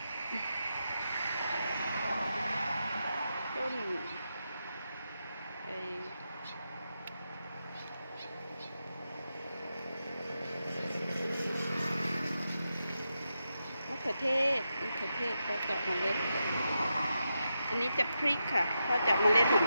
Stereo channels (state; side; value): inverted; both; correlation -0.87